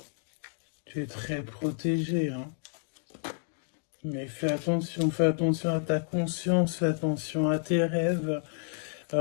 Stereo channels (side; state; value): right; silent; digital silence